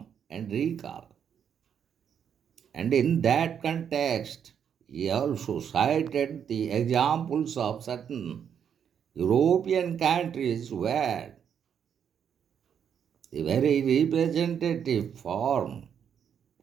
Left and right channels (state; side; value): quieter; left; 8.1 dB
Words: and recall. And in that context, he also cited the examples of certain European countries where the very representative form